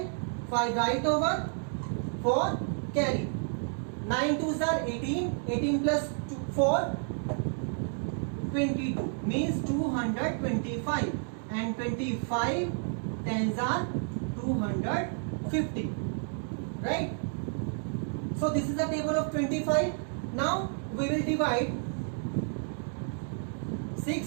5 right over, 4 carry, 9 2s are 18, 18 plus 4 22 means 225 and 25 10s are 250, right? So this is the table of 25. Now we will divide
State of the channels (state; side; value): silent; left; 57 dB below the other